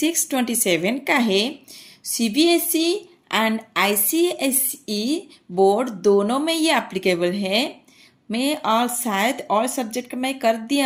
का है। सीबीएसई एंड आईसीएसई बोर्ड दोनों में ये एप्लीकेबल है। मैं और शायद और सब्जेक्ट का मैं कर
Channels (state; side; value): identical; both; correlation 1.00